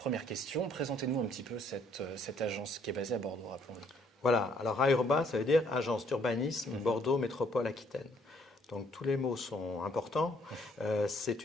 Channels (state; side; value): normal; both; correlation 0.65